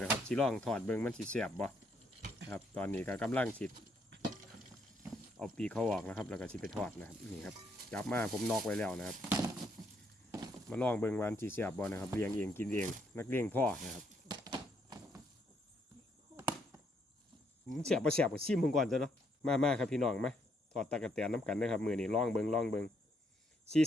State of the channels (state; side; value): normal; both; correlation 0.73